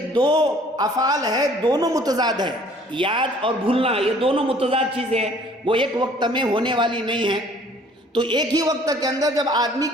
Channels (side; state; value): both; normal; correlation 0.55